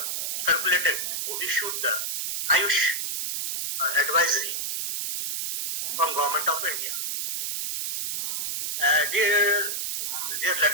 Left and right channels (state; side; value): noise; right; hiss, 2 dB below the sound